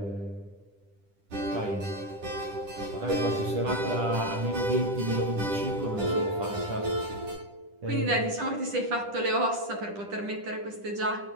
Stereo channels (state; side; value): late; left; 10 ms